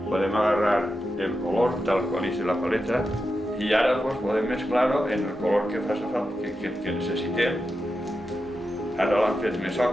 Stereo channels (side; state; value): both; normal; correlation 0.89